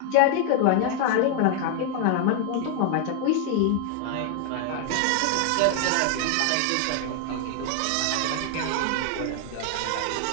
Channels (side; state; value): both; different; correlation 0.00